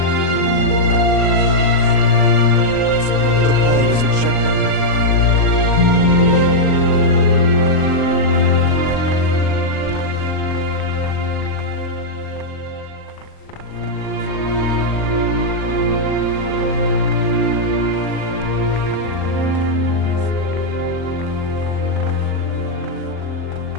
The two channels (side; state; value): right; late; 39 ms